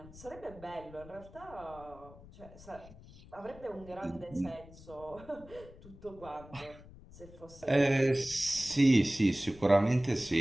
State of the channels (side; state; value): left; noise; rumble, 19 dB below the sound